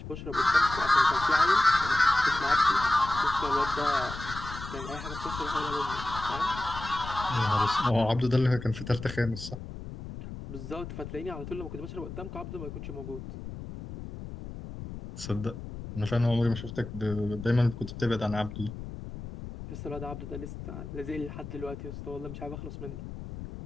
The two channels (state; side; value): noise; left; rumble, 10 dB below the sound